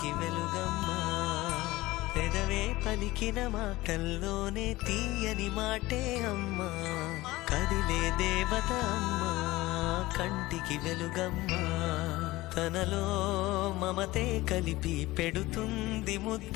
వెలుగమ్మా. పెదవే పలికిన మాటల్లోనే తీయని మాటే అమ్మా, కదిలే దేవత అమ్మా, కంటికి వెలుగమ్మా. తనలో మమతే కలిపి పెడుతుంది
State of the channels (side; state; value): right; quieter; 18.9 dB